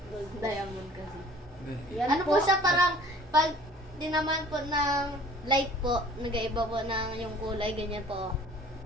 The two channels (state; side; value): normal; both; correlation 0.50